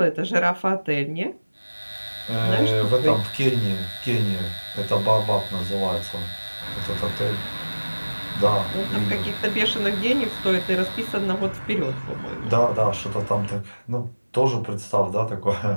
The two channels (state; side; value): inverted; both; correlation -1.00